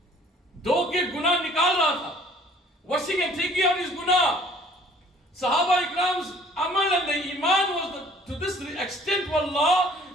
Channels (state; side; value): normal; both; correlation 0.54